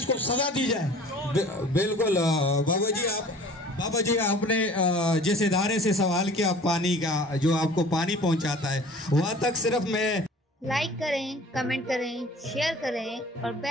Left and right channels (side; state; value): both; normal; correlation 0.47